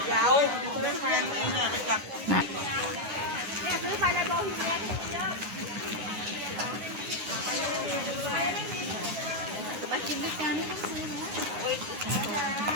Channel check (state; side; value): late; left; 9.5 ms